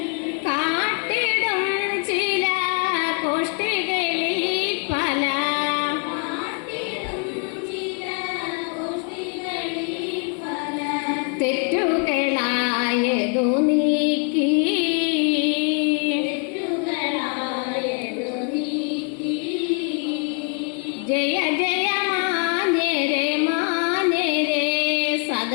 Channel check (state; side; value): quieter; right; 39.3 dB